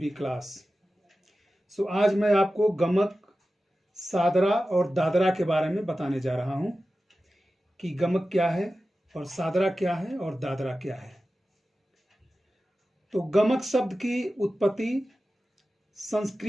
class. आज मैं आपको गमक, सादरा और दादरा के बारे में बताने जा रहा हूं कि गमक क्या है और सादरा क्या है और दादरा क्या है। तो गमक शब्द की उत्पत्ति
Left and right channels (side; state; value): both; normal; correlation 0.94